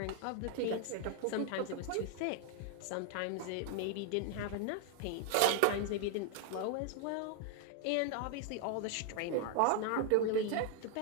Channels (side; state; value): both; different; correlation 0.00